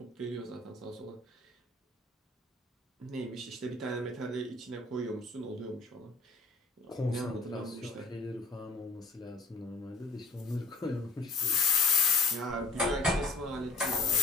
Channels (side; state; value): right; quieter; 3.3 dB